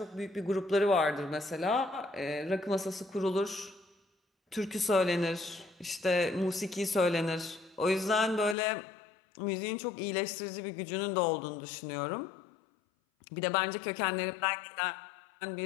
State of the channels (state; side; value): drops out; right; at 8.6 s